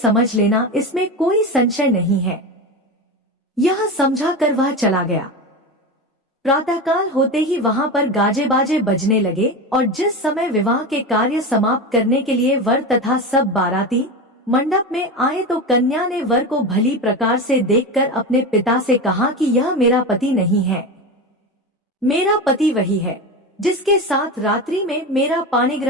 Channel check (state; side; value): normal; both; correlation 0.22